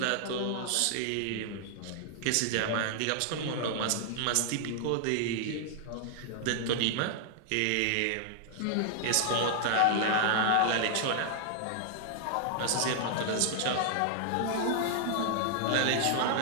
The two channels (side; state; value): both; different; correlation -0.01